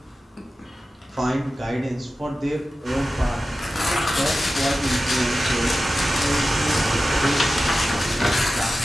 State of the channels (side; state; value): both; normal; correlation 0.94